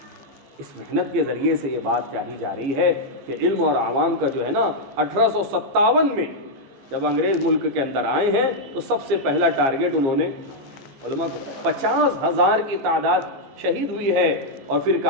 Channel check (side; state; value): left; late; 15 ms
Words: اس محنت کے ذریعے سے یہ بات چاہی جا رہی ہے کہ علم اور عوام کا جو ہے نا 1857 میں جب انگریز ملک کے اندر آئے ہیں تو سب سے پہلا ٹارگٹ انہوں نے علماء کو 50,000 کی تعداد شہید ہوئی ہے. اور پھر